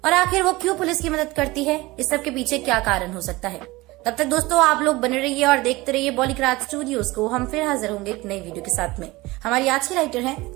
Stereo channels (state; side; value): quieter; left; 21.0 dB